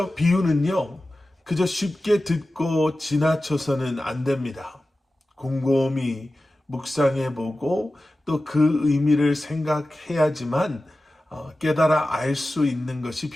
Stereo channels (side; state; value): both; normal; correlation 0.95